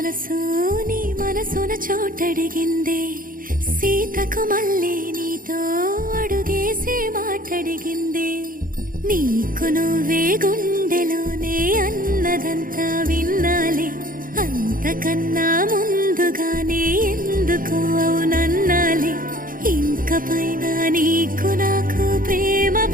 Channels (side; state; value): left; late; 0.40 ms